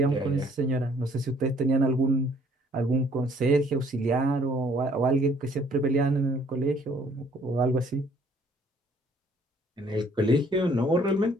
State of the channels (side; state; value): both; normal; correlation 0.60